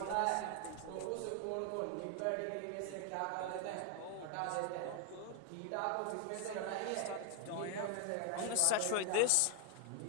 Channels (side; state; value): both; different; correlation 0.00